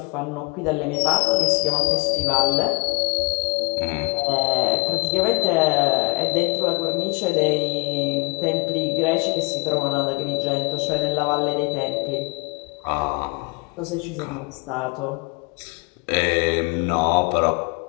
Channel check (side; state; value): right; quieter; 30.2 dB